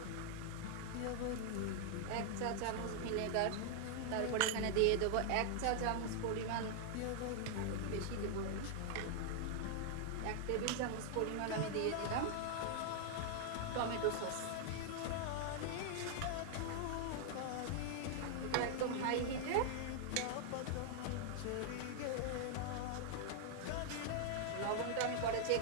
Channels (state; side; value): different; both; correlation 0.00